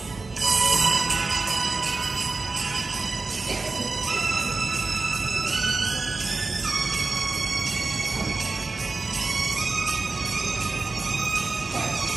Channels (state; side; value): quieter; left; 3.7 dB